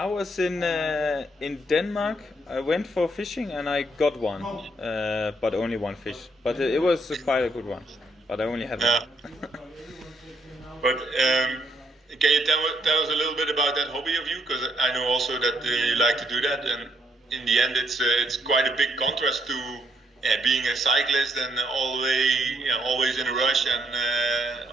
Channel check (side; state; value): both; normal; correlation 0.73